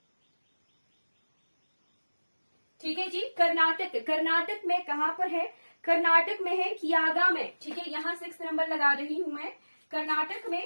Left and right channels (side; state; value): both; inverted; correlation -1.00